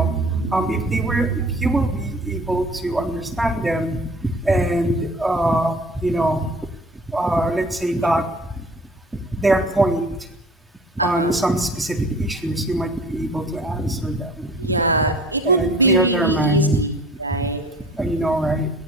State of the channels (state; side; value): normal; both; correlation 0.47